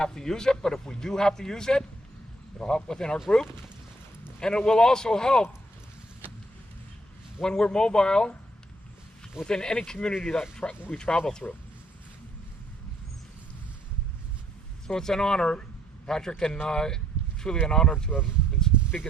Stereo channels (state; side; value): normal; both; correlation 0.67